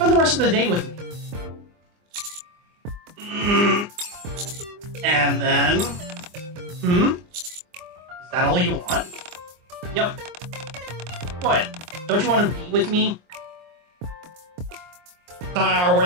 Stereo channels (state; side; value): late; left; 24 ms